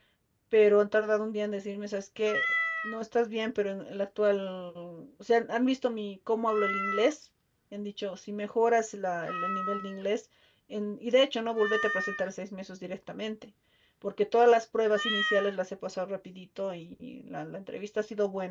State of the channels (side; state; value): both; identical; correlation 1.00